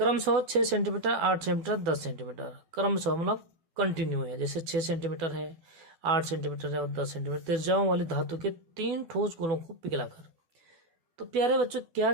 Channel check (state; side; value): late; left; 12 ms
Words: 6 सेंटीमीटर, 8 सेंटीमीटर, 10 सेंटीमीटर, क्रमशः मतलब कंटिन्यू है, जैसे 6 सेंटीमीटर है, 8 सेंटीमीटर है और 10 सेंटीमीटर त्रिज्याओं वाली धातु के 3 ठोस गोलों को पिघलाकर तो प्यारे बच्चों क्या